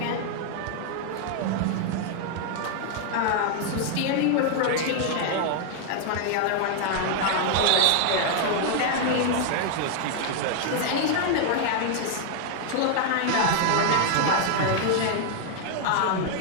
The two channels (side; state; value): both; different; correlation 0.00